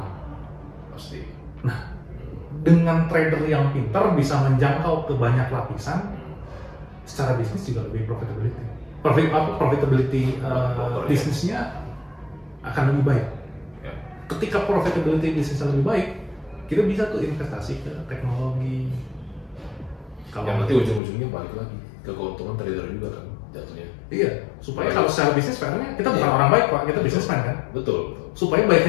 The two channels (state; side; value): drops out; right; at 21.0 s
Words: Pasti. Nah, dengan trader yang pintar bisa menjangkau ke banyak lapisan, secara bisnis juga lebih profitability bisnisnya akan lebih baik. Ya. Ketika profitability bisnisnya lebih baik, kita bisa tuh investasi ke teknologi. Yang nanti ujung-ujungnya balik lagi ke keuntungan trader juga kan jatuhnya. Iya, supaya kalau secara bisnis fairnya kita bukan orang baik Pak, kita businessman kan. Betul. Supaya